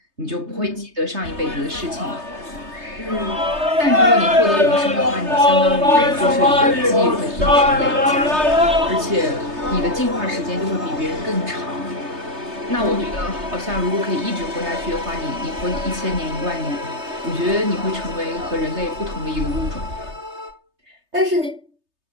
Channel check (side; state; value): left; late; 3.3 ms